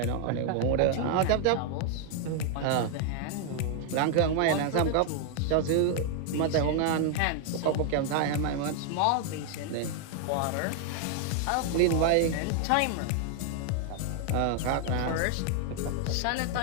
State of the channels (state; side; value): different; both; correlation 0.00